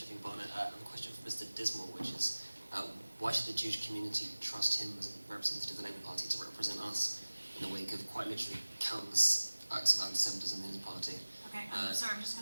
Barnet. I have a question for Mr. Dismore, which is, why should the Jewish community trust him as a representative of the Labour Party to represent us in the wake of quite literally countless acts of anti-Semitism in his party? Okay, I'm sorry, I'm just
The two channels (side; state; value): both; inverted; correlation -1.00